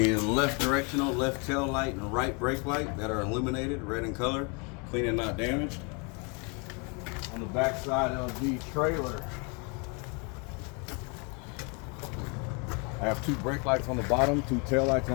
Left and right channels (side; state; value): right; quieter; 33.3 dB